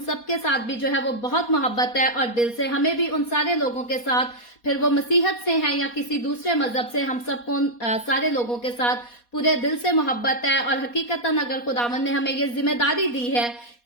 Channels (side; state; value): right; late; 4.2 ms